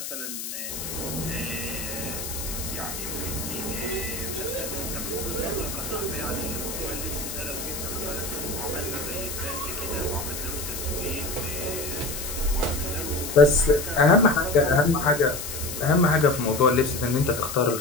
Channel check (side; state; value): left; noise; hiss, 7 dB below the sound